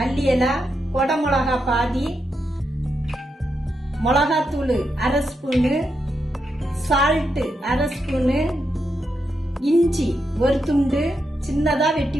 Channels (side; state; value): both; normal; correlation 0.84